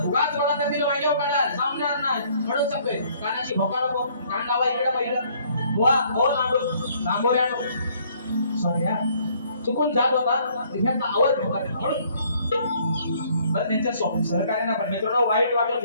उगाच मला त्यातील वांग्यावर काढा जमणार नाही म्हणून सांगतोय कानाची भोका नको कान लावा इकडे पहिलं बुवा हो लांबोऱ्यानो सॉरी चुकून जात होता ह्याचा आवाज ठेवा म्हणून बरं त्यांच्या सहकार्यांना पण मित्रांनो वाईट वाटून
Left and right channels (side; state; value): both; inverted; correlation -0.62